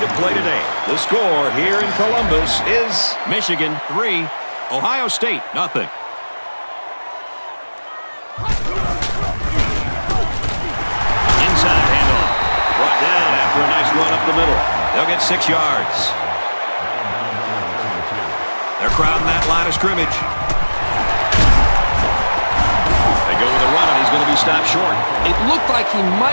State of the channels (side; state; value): both; inverted; correlation -1.00